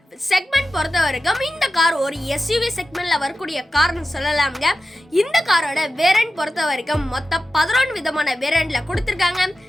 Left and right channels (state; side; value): normal; both; correlation 0.93